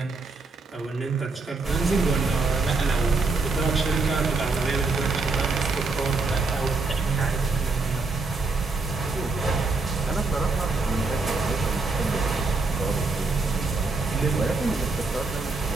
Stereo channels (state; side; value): quieter; left; 3.7 dB